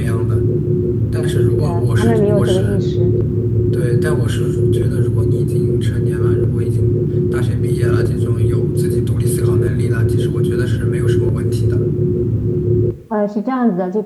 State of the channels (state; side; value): identical; both; correlation 1.00